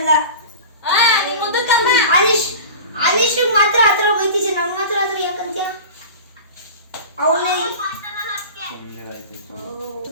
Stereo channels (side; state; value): both; inverted; correlation -0.34